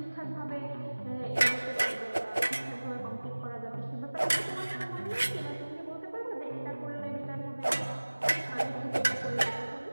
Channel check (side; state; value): both; inverted; correlation -1.00